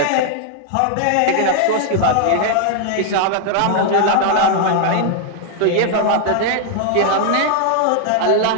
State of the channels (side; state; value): both; different; correlation 0.00